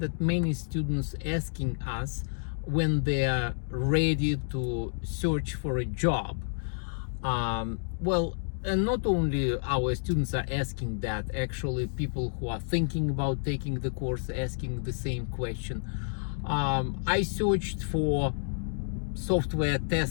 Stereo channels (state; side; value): silent; right; digital silence